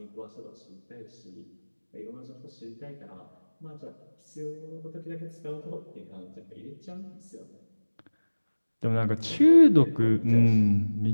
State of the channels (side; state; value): both; inverted; correlation -1.00